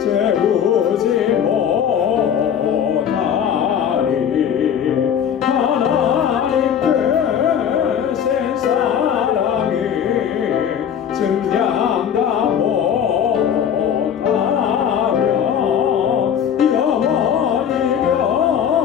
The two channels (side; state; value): right; quieter; 8.6 dB